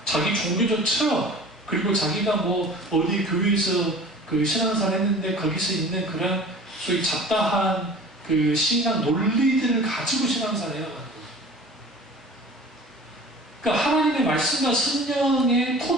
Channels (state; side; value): normal; both; correlation 0.42